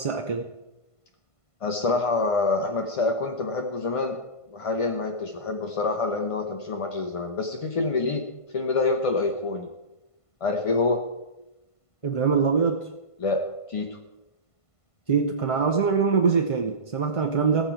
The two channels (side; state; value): right; late; 1.5 ms